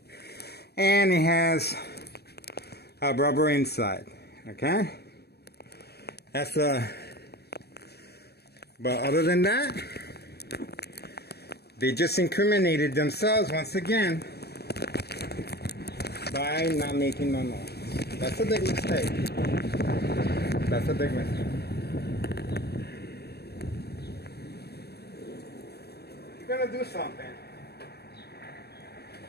and it has a rubber inside. Okay, that's but other than that, they just incriminated themselves once again by not making no noise. That's a big mistake. That's a big mistake. If you're gonna do something,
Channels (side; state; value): right; late; 0.47 ms